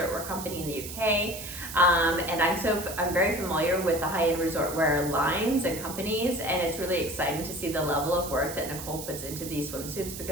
wear company in the UK. And I'm very familiar with the high-end resort wear lines and companies, and it's really exciting to see the level of work that Nicole puts into these swimsuits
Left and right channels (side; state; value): right; noise; hiss, 10 dB below the sound